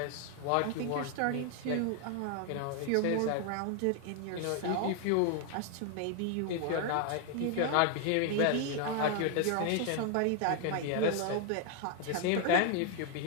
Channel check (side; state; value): both; different; correlation 0.00